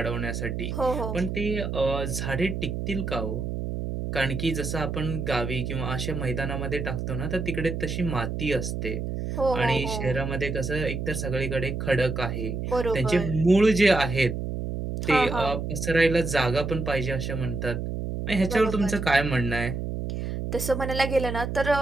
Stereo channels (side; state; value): right; noise; hum, 4 dB below the sound